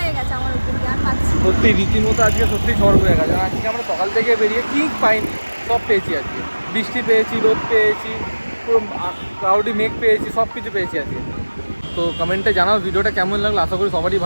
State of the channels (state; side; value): inverted; both; correlation -1.00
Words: গেছে আমার উপর দিয়ে, আর পাচ্ছি সত্যি রীতিমতো আজকে সত্যি ঝড় বয়ে গেছে। আজকে আমরা সকাল থেকে বেরিয়ে কি পাইনি, সব পেয়েছি আজকে। বৃষ্টি পেয়েছি, রোদ পেয়েছি, পুরো ক্লাউডি মেঘ পেয়েছি, সব কিছু পেয়েছি আজকে। তো কমেন্টে জানাও ভিডিওটা কেমন লাগলো, আশা করি সবারই